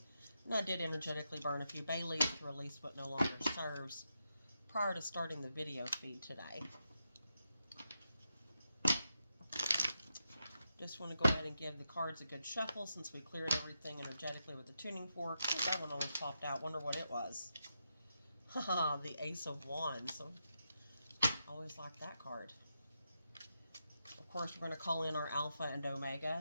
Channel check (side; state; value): both; inverted; correlation -0.85